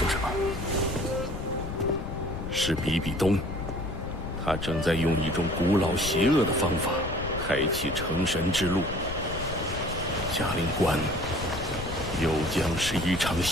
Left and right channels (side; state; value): left; noise; rumble, 8 dB below the sound